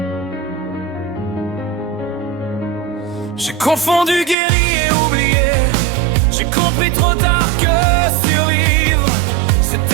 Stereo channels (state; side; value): drops out; left; at 4.4 s